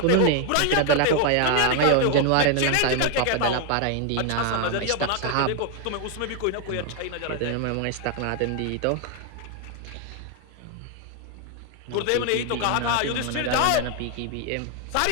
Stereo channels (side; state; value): both; different; correlation 0.01